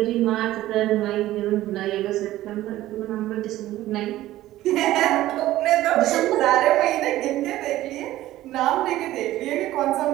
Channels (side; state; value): left; quieter; 15.1 dB